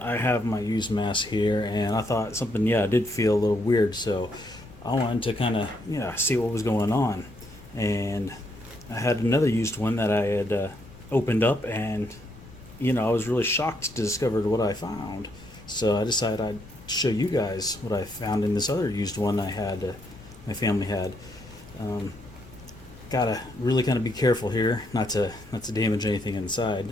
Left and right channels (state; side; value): noise; left; rumble, 20 dB below the sound